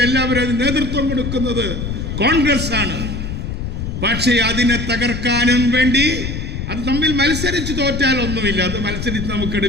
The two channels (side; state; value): left; noise; rumble, 5 dB below the sound